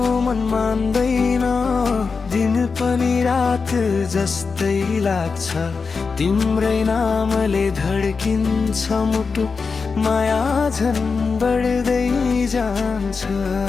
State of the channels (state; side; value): quieter; right; 4.9 dB